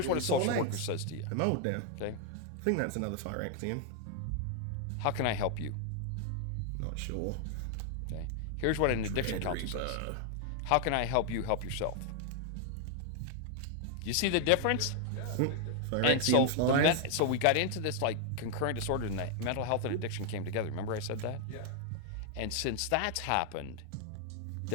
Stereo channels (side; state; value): both; different; correlation 0.00